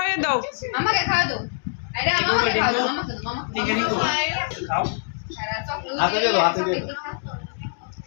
দাও। আমাকে খাওয়া দাও। আরে আমাকে খাওয়া দাও, আমাকে দাও, খাও। হাতে দিয়ে দাও, হাতে দিয়ে দাও।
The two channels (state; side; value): silent; right; digital silence